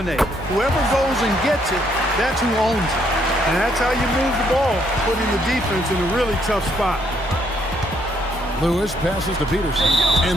Whoever goes and gets it, that's who owns it. And that's how you move the ball, putting the defense in a really tough spot. Lewis passes to Peterson.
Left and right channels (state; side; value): normal; both; correlation 0.71